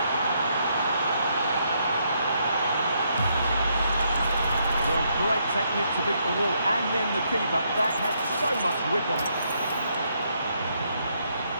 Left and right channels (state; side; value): inverted; both; correlation -0.75